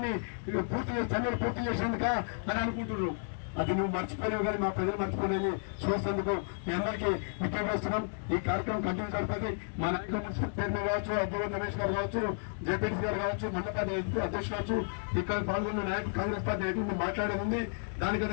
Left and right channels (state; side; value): silent; right; digital silence